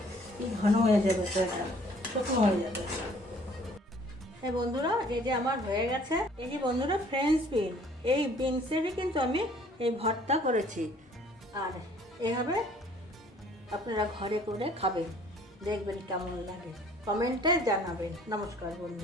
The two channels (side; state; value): both; normal; correlation 0.56